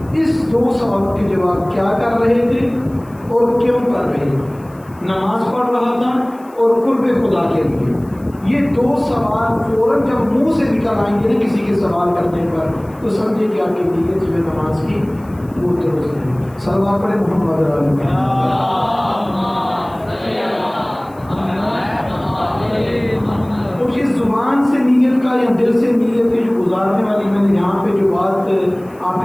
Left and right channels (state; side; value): noise; left; hiss, 29 dB below the sound